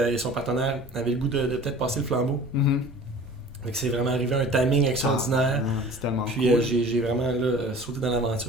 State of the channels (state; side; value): normal; both; correlation 0.44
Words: son partenaire avaient le goût de peut-être passer le flambeau. Mhm. Fait que c'est vraiment arrivé un timing extraordinaire. C'est tellement Puis cool. j'ai vraiment là, sauté dans